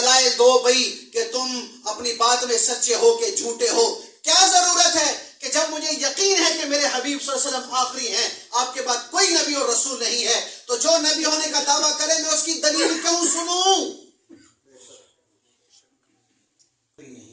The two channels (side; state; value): both; identical; correlation 1.00